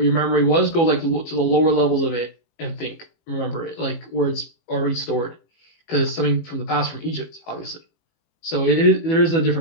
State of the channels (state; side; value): late; right; 18 ms